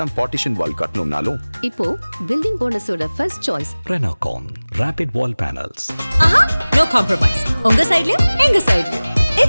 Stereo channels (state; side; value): inverted; both; correlation -0.99